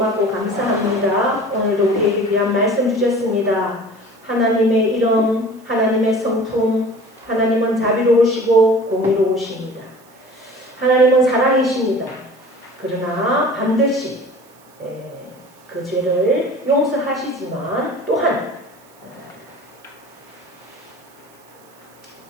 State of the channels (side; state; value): right; noise; hiss, 29 dB below the sound